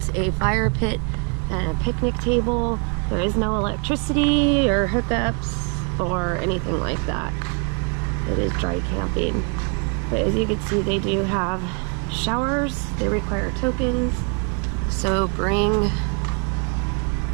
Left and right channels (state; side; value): quieter; left; 36.2 dB